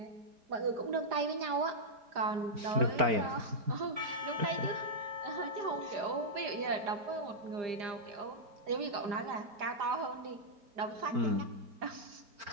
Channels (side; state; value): left; late; 4.9 ms